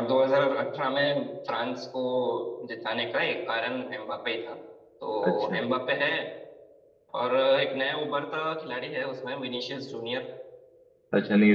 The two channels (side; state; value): both; identical; correlation 1.00